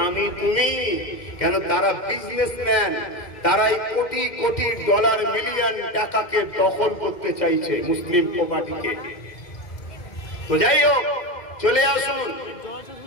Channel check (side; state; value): right; late; 2.1 ms